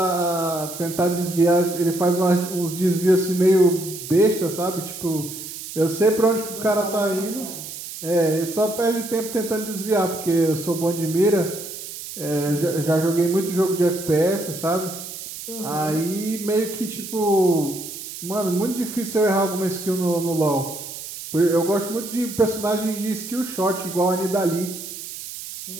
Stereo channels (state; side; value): noise; right; hiss, 10 dB below the sound